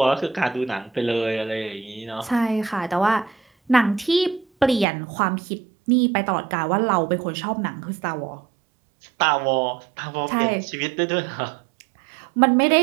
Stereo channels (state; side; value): drops out; left; at 4.9 s